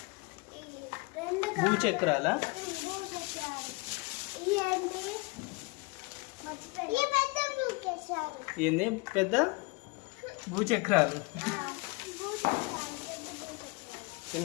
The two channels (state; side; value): quieter; right; 27.0 dB